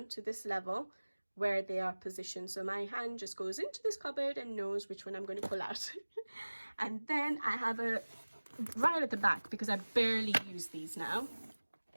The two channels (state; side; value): inverted; both; correlation -1.00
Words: to this level where they are positioned. So my hand just goes into this cupboard and knows which one I'm going to pull out. And then I have right at the back, because I barely use these now,